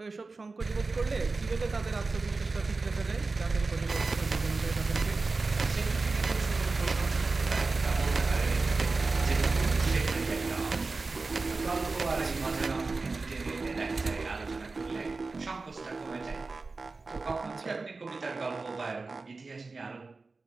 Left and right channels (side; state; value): left; quieter; 3.8 dB